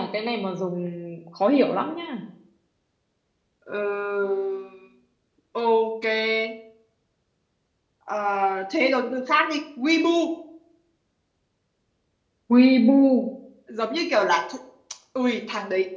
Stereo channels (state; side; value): identical; both; correlation 1.00